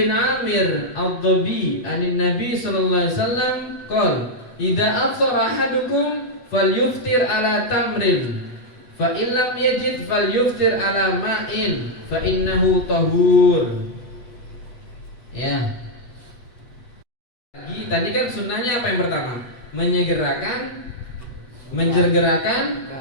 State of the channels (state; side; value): late; right; 8.2 ms